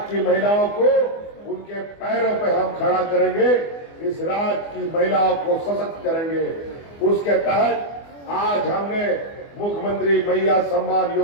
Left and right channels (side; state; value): right; late; 24 ms